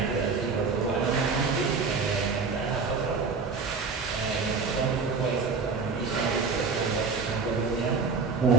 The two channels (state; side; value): quieter; left; 4.8 dB